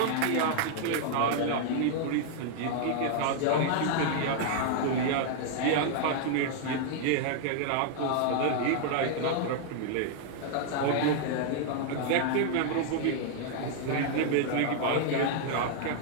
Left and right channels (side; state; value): both; different; correlation 0.00